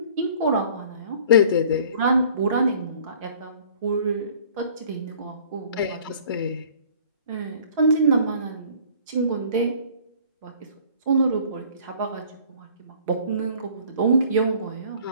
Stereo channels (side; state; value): both; inverted; correlation -0.51